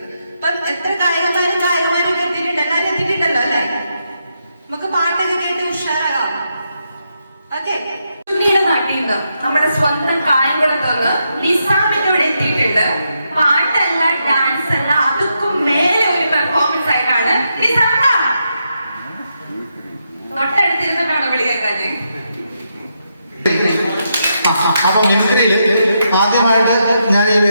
ഇപ്പം എത്ര ഗായകന്മാരും എത്തിയിട്ടുണ്ട്, എല്ലാവരും എത്തിയിട്ടുണ്ടല്ലോ അല്ലെ? നമുക്ക് പാട്ടൊക്കെ കേട്ട് ഉഷാറാകാം. ഓക്കെ, ചുണ്ണിയുടെ നാട്ടിൽ നിന്ന് നമ്മുടെ സ്വന്തം കായംകുളത്ത് നിന്ന് നിസാമിന്റെ ഇവിടെ എത്തിയിട്ടുണ്ട്. പാട്ടല്ല, ഡാൻസ് അല്ല, അതുക്കും മേലെ ഒരു പെർഫോമൻസ് ആയിട്ടാണ് നിസാമ തൊട്ടടുത്തിരുന്നിട്ടാണ് വിളി കേൾക്കാന്. അപ്പൊ മിമിക്രിയിൽ ആദ്യമായിട്ട് ഞാൻ ഈ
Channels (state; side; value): inverted; both; correlation -0.82